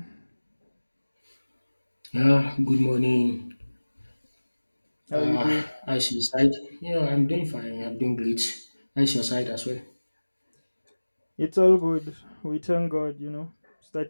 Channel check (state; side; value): inverted; both; correlation -1.00